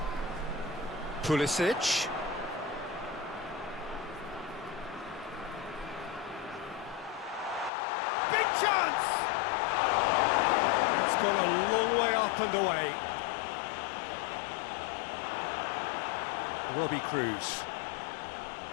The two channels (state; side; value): drops out; right; at 7.7 s